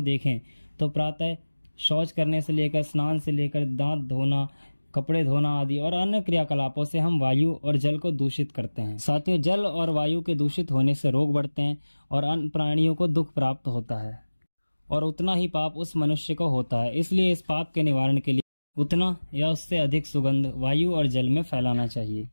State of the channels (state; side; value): inverted; both; correlation -1.00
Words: देखें तो प्रातः शौच करने से लेकर स्नान से लेकर दांत धोना, कपड़े धोना आदि और अन्य क्रियाकलापों से हम वायु और जल को दूषित करते हैं। साथियों, जल और वायु के दूषित होने से रोग बढ़ते हैं और अन्य प्राणियों को दुख प्राप्त होता है और उतना ही पाप उस मनुष्य को होता है। इसलिए इस पाप के निवारण के लिए उतना या उससे अधिक सुगंध वायु और जल में फैलाना चाहिए।